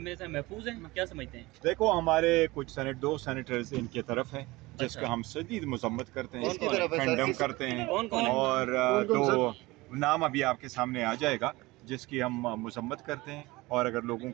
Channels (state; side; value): quieter; left; 21.1 dB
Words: हैं महफूज हैं, क्या समझते हैं? देखो हमारे कुछ दो सेनेटर्स इनके तरफ हैं जिसका हम शदीद मजम्मत करते हैं, कंडम करते हैं, और तो नाम अभी आपके सामने आ जाएगा जिसकी हम मजम्मत करते हैं। और अगर लोगों